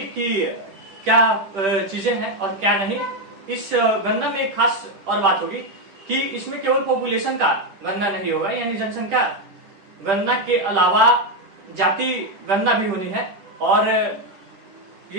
कि क्या चीजें हैं और क्या नहीं। इस गणना में एक खास और बात होगी कि इसमें केवल पॉपुलेशन का गणना नहीं होगा, यानी जनसंख्या गणना के अलावा जाति गणना भी होनी है। और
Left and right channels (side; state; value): left; late; 10 ms